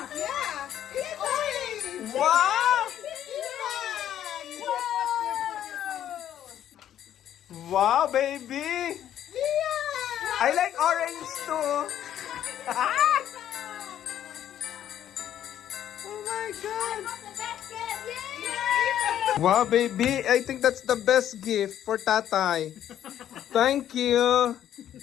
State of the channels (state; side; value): quieter; right; 10.8 dB